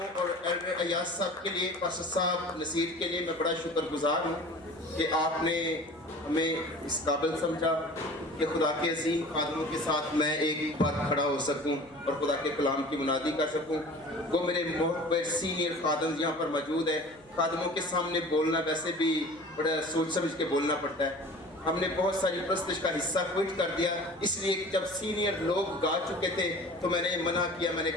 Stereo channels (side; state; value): right; noise; hum, 28 dB below the sound